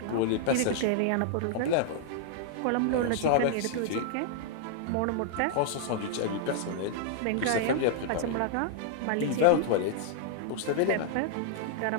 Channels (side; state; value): both; different; correlation -0.01